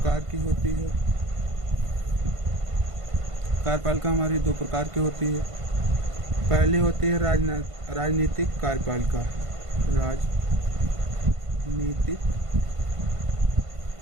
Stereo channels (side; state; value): left; late; 1.5 ms